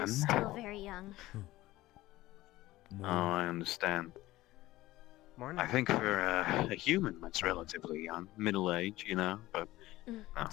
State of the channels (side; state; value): right; quieter; 17.2 dB